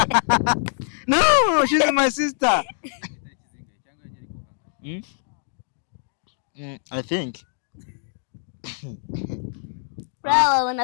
no she's my sister I think wabona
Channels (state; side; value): silent; right; digital silence